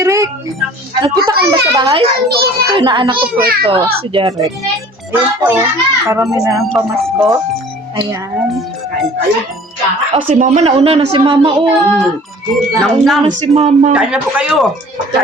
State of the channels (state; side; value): normal; both; correlation 0.48